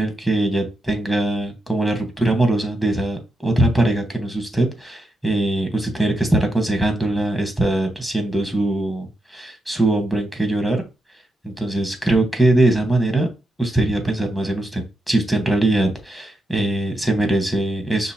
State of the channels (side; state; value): both; normal; correlation 0.85